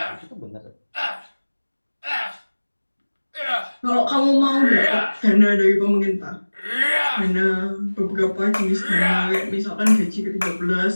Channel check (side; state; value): both; inverted; correlation -1.00